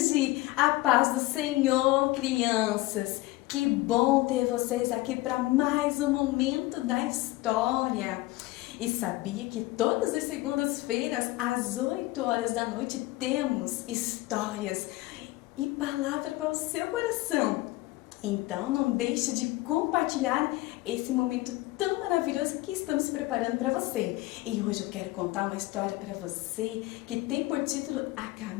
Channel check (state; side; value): quieter; right; 19.3 dB